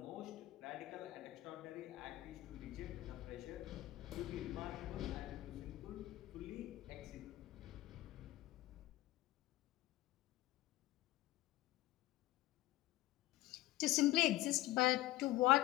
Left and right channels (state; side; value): quieter; right; 17.2 dB